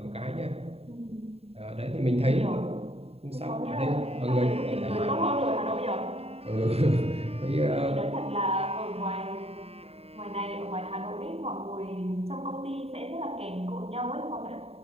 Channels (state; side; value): late; left; 0.29 ms